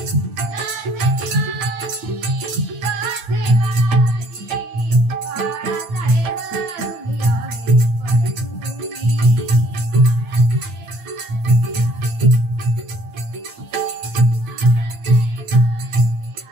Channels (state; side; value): late; left; 9.0 ms